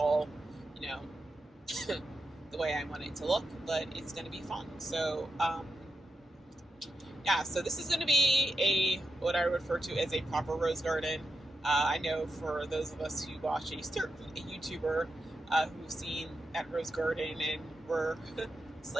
the way I want it to look, but it's going to be fun. So so this is going to be what I refer to as a proper rose garden. I know for those of us who watch a YouTuber who've seen that rose garden and were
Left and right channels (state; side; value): normal; both; correlation 0.88